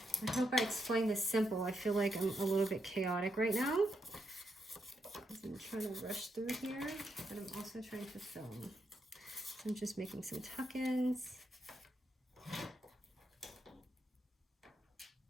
I hope I explained this simple. I feel like I'm a little bit chaotic right now, because I'm trying to rush through here, but I'm also trying to film. So I'm just making some tuck-ins.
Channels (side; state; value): both; normal; correlation 0.81